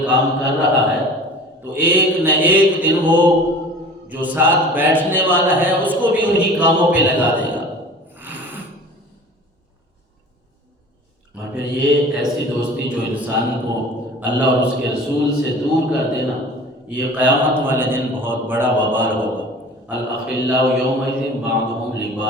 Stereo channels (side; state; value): both; normal; correlation 0.41